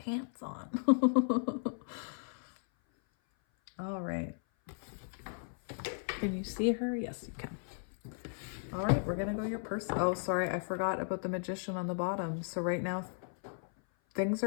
on. All right. Can you see her? Yes, you can. All right, we're going to go your person. Oh, sorry, I forgot about the Magician on the bottom. So right now, things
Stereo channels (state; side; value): silent; right; 54 dB below the other